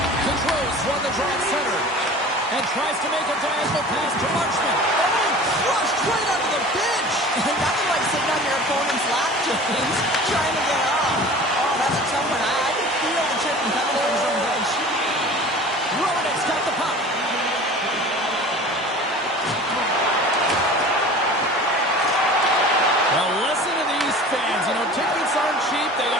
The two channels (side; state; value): both; normal; correlation 0.41